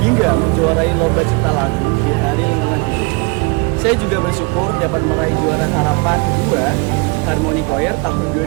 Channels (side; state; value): left; quieter; 30.1 dB